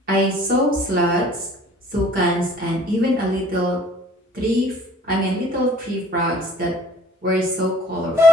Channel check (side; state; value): both; normal; correlation 0.52